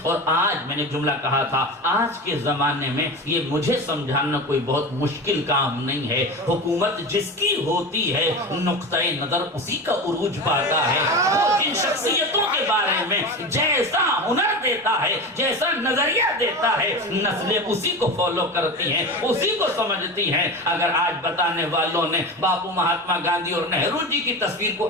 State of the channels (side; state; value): both; normal; correlation 0.26